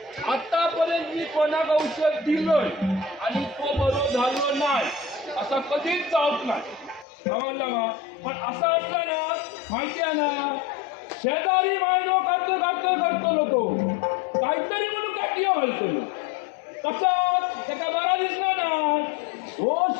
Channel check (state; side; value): drops out; right; at 7.1 s